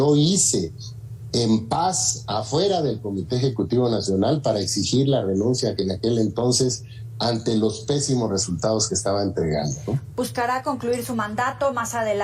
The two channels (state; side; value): identical; both; correlation 1.00